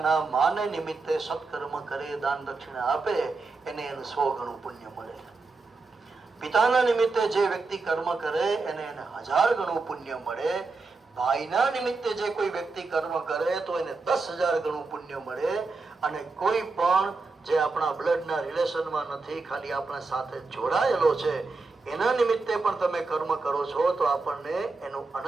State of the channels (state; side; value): quieter; left; 3.9 dB